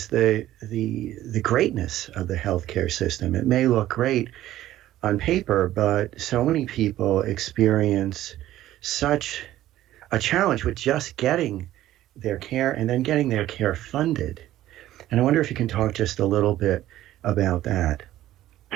the greatness of the healthcare system. It may look great on paper, but so many people experience such a challenge with just getting their care and then getting their care funded. And I wonder if you can talk just a little bit about that.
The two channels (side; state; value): left; quieter; 14.0 dB